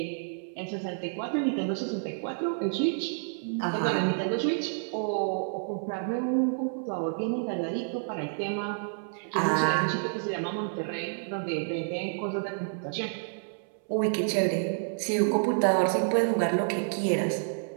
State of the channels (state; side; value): silent; left; 58 dB below the other